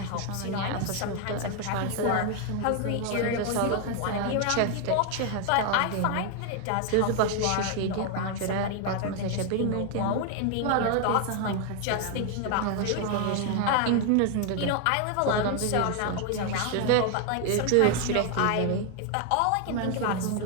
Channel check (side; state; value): both; different; correlation 0.00